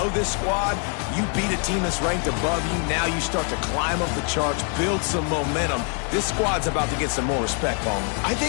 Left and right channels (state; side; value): quieter; right; 39.9 dB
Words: this squad. You beat a team that's ranked above you. Now you start to climb up the charts, build some momentum. This squad's about about to get some more respect, Palmer. I